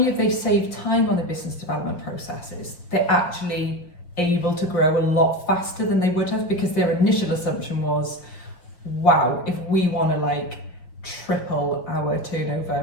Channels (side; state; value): right; late; 5.6 ms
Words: have they saved time on the business development processes, they're actually able to grow a lot faster than they would have, because their initial assumption was, wow, if we want to triple our turnover